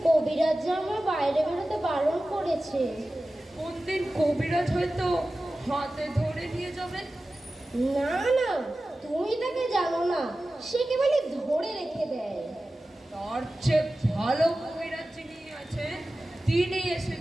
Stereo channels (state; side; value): normal; both; correlation 0.95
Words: কবিরাজ যে আমার বাইরে বেরোতে বারণ করেছে। কোন দিন কবিরাজ হয়তো হাতে ধরে নিয়ে যাবে। না না, তুমি তাকে জানো না, সে কেবলই ধরে রেখে দেয়। তার চেয়ে ভালো কবিরাজ যিনি আছে তিনি এসে